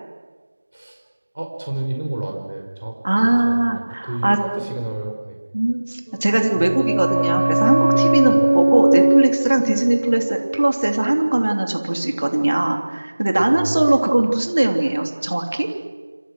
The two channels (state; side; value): inverted; both; correlation -1.00